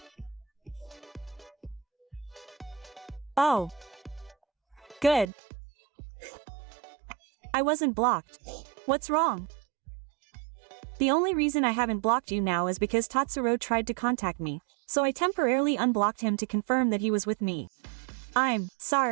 Oh. Good. I wasn't blocked. What's wrong? The only reason I haven't blocked you now is because Tatsuro tried to contact me, so I temporarily unblocked him to confirm that he was with me. I'm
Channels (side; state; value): left; drops out; at 5.2 s